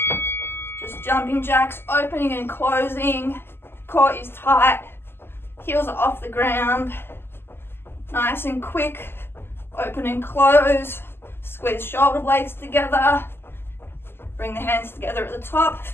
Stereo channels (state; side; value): late; right; 0.11 ms